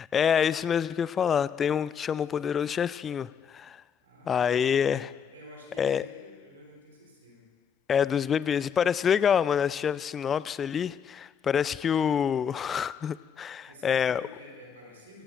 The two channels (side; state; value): right; quieter; 7.5 dB